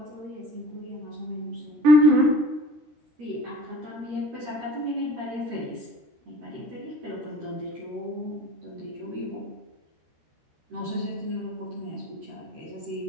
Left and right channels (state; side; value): late; left; 13 ms